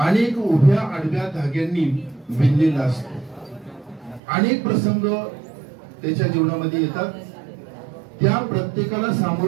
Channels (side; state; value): left; drops out; at 4.2 s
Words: अनेक उभ्या आडव्या धाग्यांनी विणलेला असतो. अनेक प्रसंग त्याच्या जीवनामध्ये येतात. त्या प्रत्येकाला